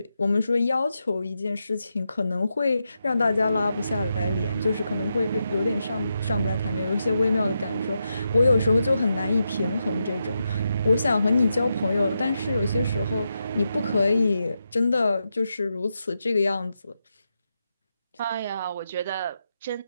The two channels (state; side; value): inverted; both; correlation -0.86